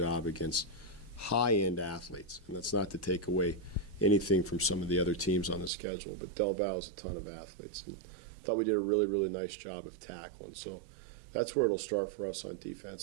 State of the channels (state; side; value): drops out; left; at 5.7 s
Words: against high-end athletes. And that's not to take away anything from some of the other teams on the schedule, but Del Val is a ton of athletes. And I thought we did a really, really nice job of tackling. So that's where it'll start for us on